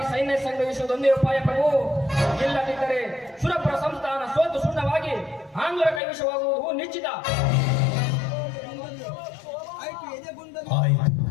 ಸೈನ್ಯ ಸಂಗ್ರಹಿಸುವುದೊಂದೇ ಉಪಾಯ ಪ್ರಭು. ಇಲ್ಲದಿದ್ದರೆ ಸುರಪುರ ಸಂಸ್ಥಾನ ಸೋತು ಸುಣ್ಣವಾಗಿ ಆಂಗ್ಲರ ಕೈವಶವಾಗುವುದು ನಿಶ್ಚಿತ. ಆಯಿತು,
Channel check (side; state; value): right; drops out; at 6.0 s